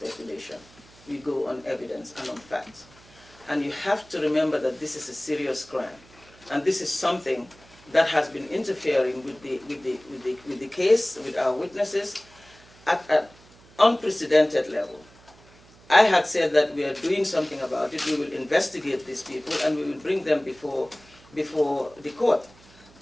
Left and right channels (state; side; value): noise; right; hum, 26 dB below the sound